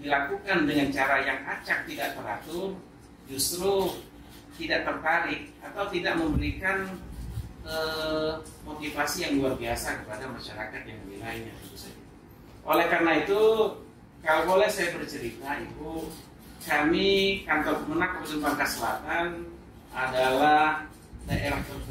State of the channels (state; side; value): identical; both; correlation 1.00